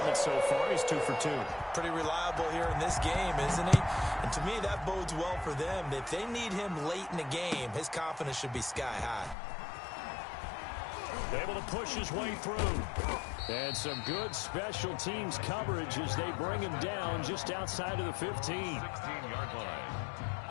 so far. He's 2 for 2. Pretty reliable here in this game, isn't he? And to me, that bodes well for them. If they need him late in the game, his confidence should be sky high. Able to push his way through. And some good special teams coverage as they bring him down just outside of the 15. 16-yard line.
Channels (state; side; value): drops out; right; at 9.3 s